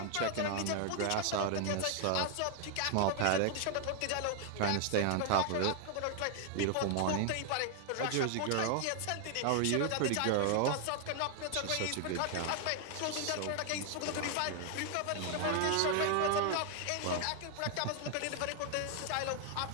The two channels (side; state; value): both; different; correlation 0.00